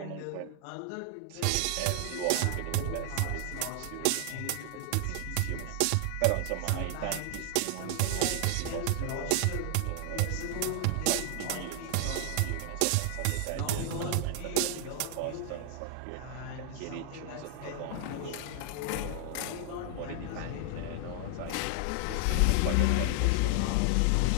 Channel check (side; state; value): both; different; correlation 0.00